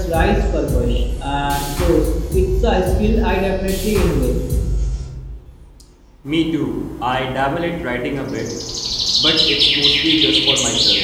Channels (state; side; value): identical; both; correlation 1.00